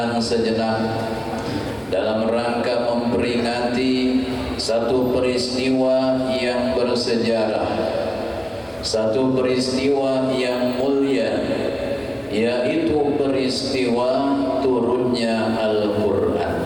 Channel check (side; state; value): left; noise; rumble, 29 dB below the sound